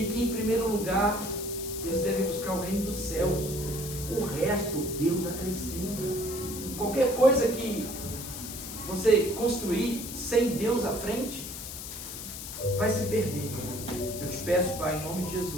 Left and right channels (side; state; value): left; noise; hiss, 9 dB below the sound